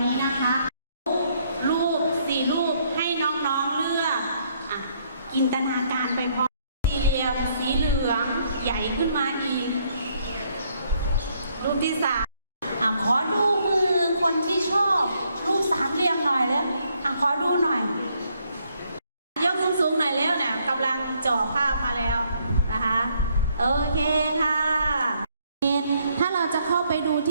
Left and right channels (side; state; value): both; inverted; correlation -0.70